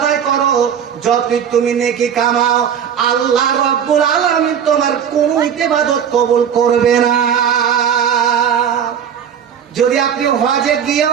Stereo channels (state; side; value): quieter; left; 8.3 dB